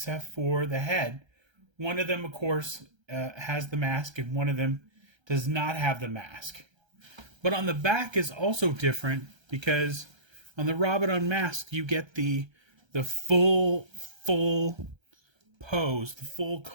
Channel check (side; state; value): left; late; 1.3 ms